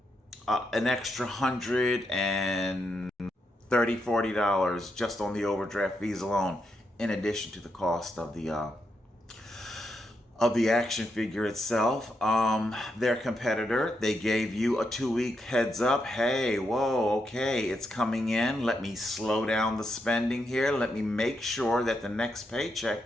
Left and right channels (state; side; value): normal; both; correlation 0.82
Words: an extra $130-$40 just on the overdraft fees alone, in addition to the cost of the action figure itself. Their competitor, they gave you a 2 week heads up. Hey, whoa, okay, it's coming in. Let me slow down the spending here. Let me make sure that the next paycheck